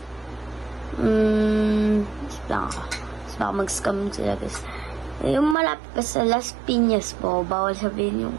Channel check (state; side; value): drops out; left; at 5.6 s